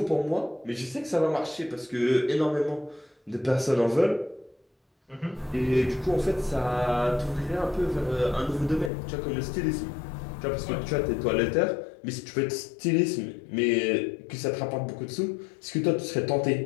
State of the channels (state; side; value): drops out; right; at 8.9 s